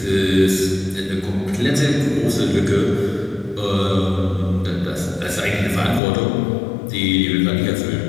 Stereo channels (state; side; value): drops out; right; at 6.0 s